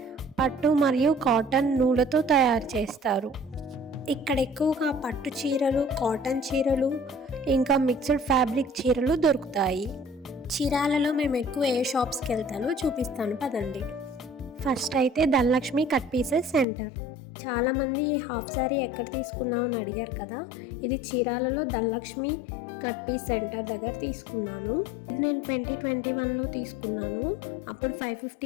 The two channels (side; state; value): right; drops out; at 16.7 s